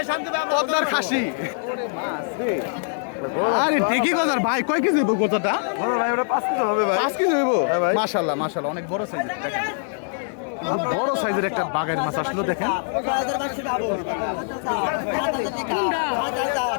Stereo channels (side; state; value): right; silent; digital silence